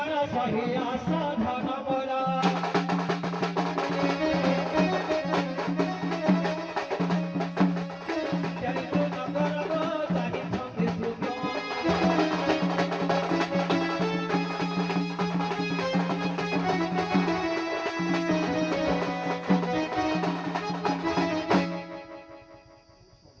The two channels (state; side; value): identical; both; correlation 1.00